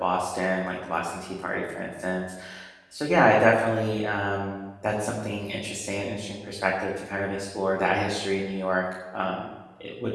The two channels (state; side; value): identical; both; correlation 1.00